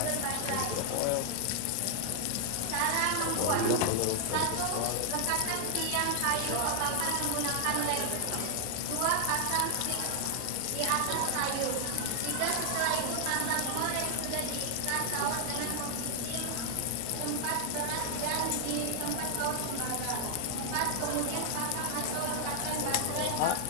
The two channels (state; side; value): different; both; correlation 0.00